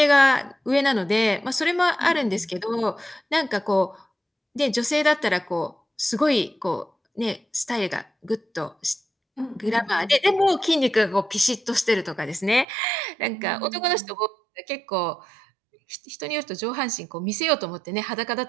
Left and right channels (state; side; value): drops out; left; at 12.7 s